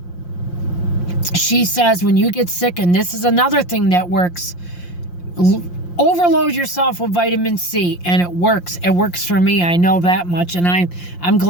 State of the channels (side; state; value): right; late; 5.7 ms